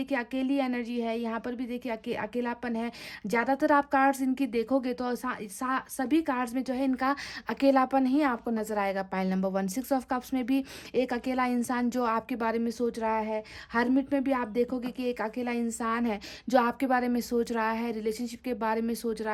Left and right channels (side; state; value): both; identical; correlation 1.00